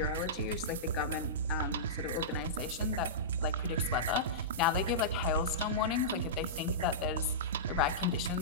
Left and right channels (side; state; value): both; normal; correlation -0.17